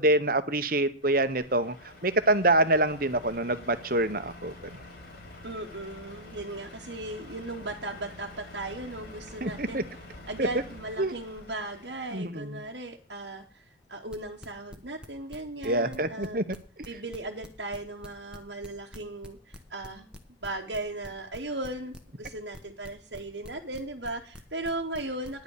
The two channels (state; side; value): normal; both; correlation -0.11